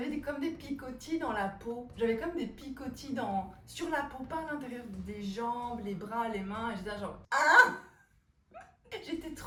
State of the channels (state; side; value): identical; both; correlation 1.00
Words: comme des picotis dans la peau. J'avais comme des picotis sur la peau, pas à l'intérieur des jambes, les bras, les mains. Et j'étais là genre ah! J'étais